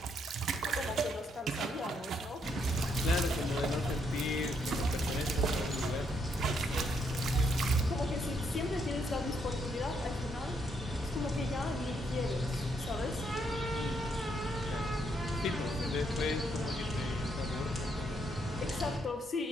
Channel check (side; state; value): both; normal; correlation 0.75